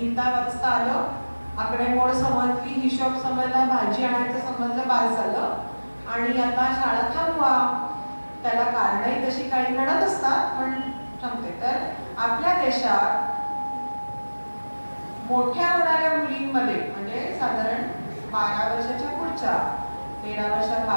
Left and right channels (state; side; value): inverted; both; correlation -1.00